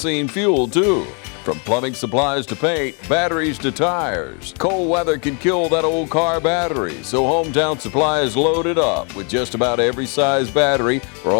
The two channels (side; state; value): right; quieter; 36.7 dB